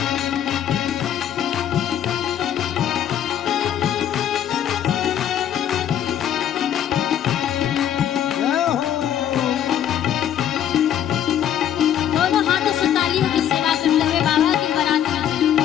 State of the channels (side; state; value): right; quieter; 10.1 dB